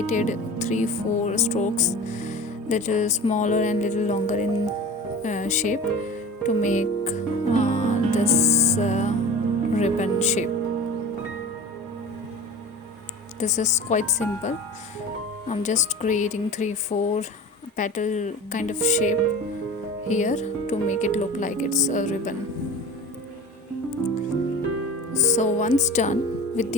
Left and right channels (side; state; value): both; normal; correlation 0.35